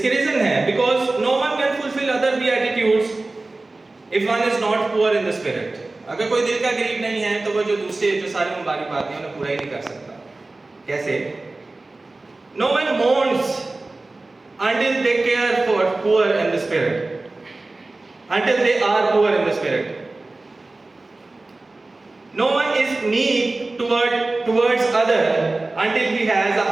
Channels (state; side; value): quieter; left; 3.1 dB